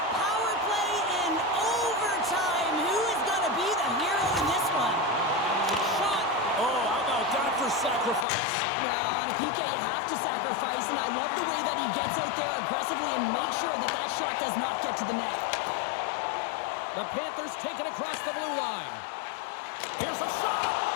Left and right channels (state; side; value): drops out; right; at 8.2 s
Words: power play in overtime. Who is going to be the hero in this one? Shot. Oh, how about that for sacrifice? Well, on a PK, you have to sacrifice, and I love the way that he gets out there aggressively and makes sure that that shot does not get to the net. The Panthers take it across the blue line. Here's a shot.